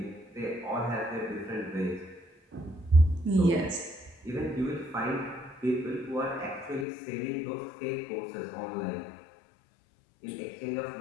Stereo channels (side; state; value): right; drops out; at 6.9 s